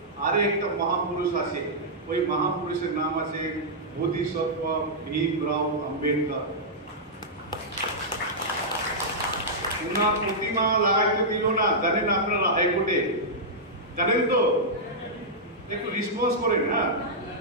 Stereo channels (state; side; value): normal; both; correlation -0.09